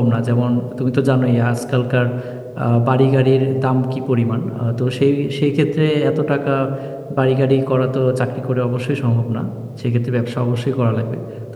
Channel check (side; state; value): both; identical; correlation 1.00